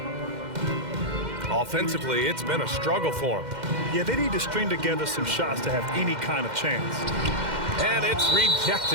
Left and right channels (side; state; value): left; late; 2.1 ms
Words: Offensively, it's been a struggle for him. Yeah, they need to string together some shots to have any kind of chance. And it's